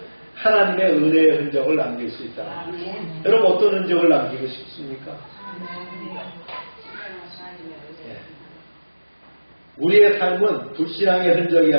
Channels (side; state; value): both; inverted; correlation -1.00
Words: 하나님의 은혜의 흔적을 남길 수 있다. 여러분 어떤 흔적을 남기고 싶습니까? 우리의 삶은 불신앙의 흔적이